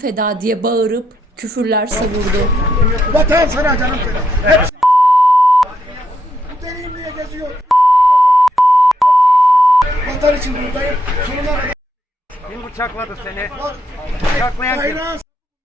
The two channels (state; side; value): normal; both; correlation 0.78